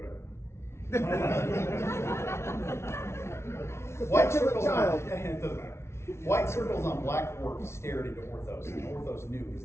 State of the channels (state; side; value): late; right; 0.13 ms